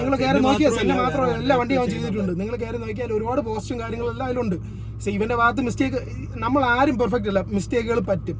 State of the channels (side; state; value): both; identical; correlation 1.00